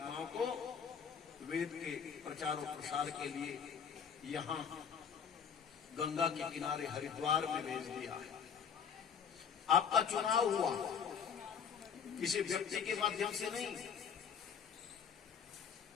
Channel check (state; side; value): quieter; right; 7.1 dB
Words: को वेद के प्रचार और प्रसार के लिए यहाँ गंगा के किनारे हरिद्वार में भेज दिया है। आपका चुनाव हुआ किसी व्यक्ति के माध्यम से नहीं,